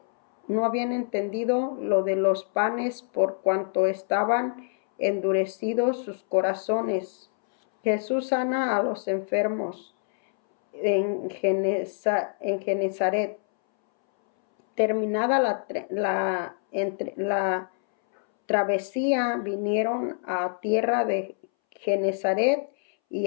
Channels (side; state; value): right; silent; 61 dB below the other